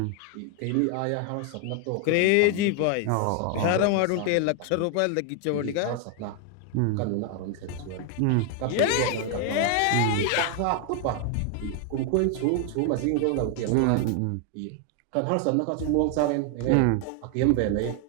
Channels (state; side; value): different; both; correlation 0.00